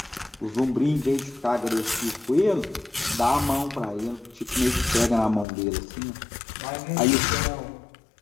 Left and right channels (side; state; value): right; drops out; at 5.5 s